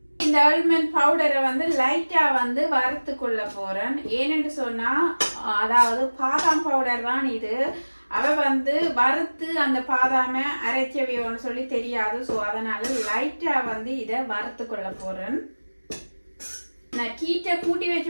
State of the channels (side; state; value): both; inverted; correlation -1.00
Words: இந்த ஆல்மண்ட் பவுடரை லைட்டா வறுத்து கொள்ள போறேன். ஏன்னு சொன்னா அதாவது பாதாம் பவுடர் தான் இது. அவ வறுத்து அந்த பாதாம அரைச்சவையோன்னு சொல்லி தெரியாது. ஸோ அதனால லைட்டா இதை வறுத்து கொள்ள போறேன். நான் ஹீட்டை கூட்டி